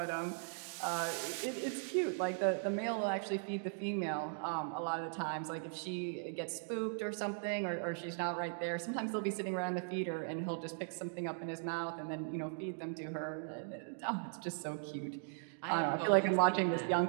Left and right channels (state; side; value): silent; left; digital silence